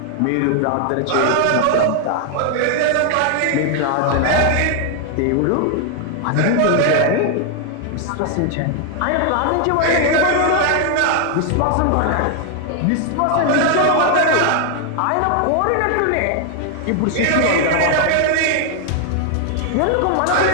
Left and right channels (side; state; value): both; different; correlation 0.00